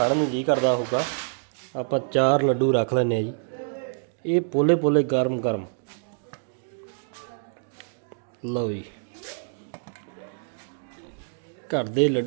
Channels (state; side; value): silent; left; digital silence